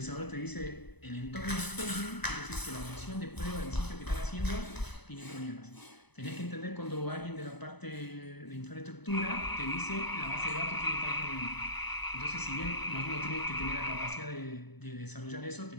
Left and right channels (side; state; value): right; late; 0.99 ms